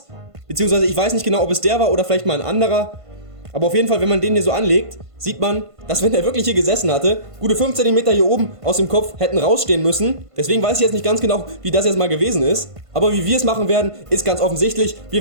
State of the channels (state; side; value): late; left; 1.5 ms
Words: Beziehungsweise ich weiß nicht genau, ob es der war oder vielleicht mal ein anderer. Aber auf jeden Fall, wenn man den hier so anlegt, sieht man, dass wenn er wirklich hier gesessen hatte, gute 5 cm hier oben aus dem Kopf hätten rausstehen müssen. Deswegen weiß ich jetzt nicht ganz genau, wie das jetzt mal gewesen ist. Aber wie wir es machen werden, ist ganz offensichtlich.